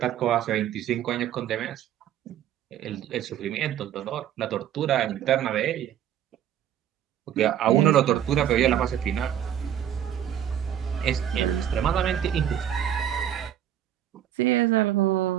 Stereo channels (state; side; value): quieter; left; 10.3 dB